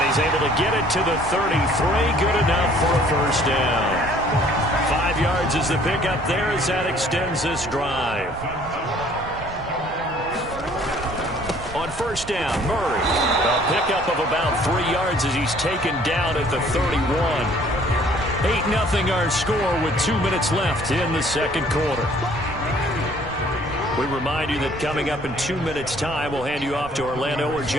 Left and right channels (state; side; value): noise; right; rumble, 14 dB below the sound